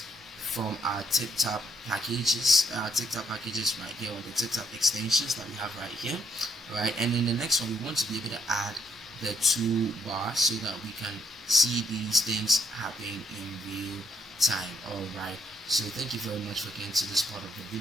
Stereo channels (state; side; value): normal; both; correlation 0.72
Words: from our tip-top packages, right here, or the tip-top extensions that we have right here. Right, and in the next one we want to be able to add the toolbar so that we can see these things happening in real time. Alright, so thank you very much for getting to this part of the